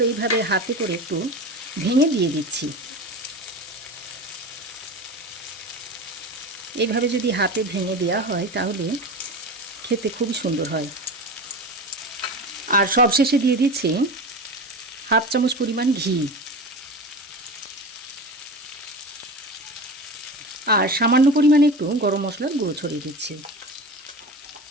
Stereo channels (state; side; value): normal; both; correlation 0.29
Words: এইভাবে হাতে করে একটু ভেঙে দিয়ে দিচ্ছি। এইভাবে যদি হাতে ভেঙে দেওয়া হয় তাহলে খেতে খুবই সুন্দর হয়। আর সবশেষে দিয়ে দিচ্ছি 1/2 চামচ পরিমাণ ঘি আর সামান্য পরিমাণে একটু গরম মশলার গুঁড়ো ছড়িয়ে দিচ্ছি।